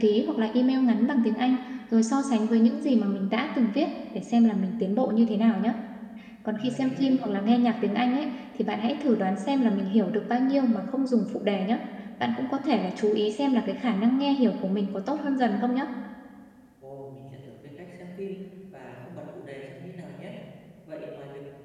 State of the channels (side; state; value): both; identical; correlation 1.00